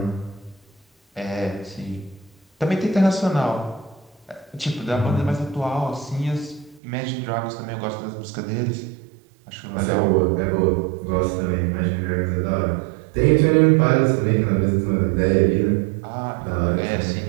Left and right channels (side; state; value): left; drops out; at 6.8 s